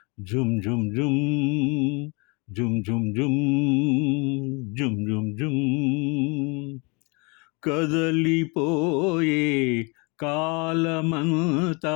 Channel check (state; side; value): quieter; right; 30.2 dB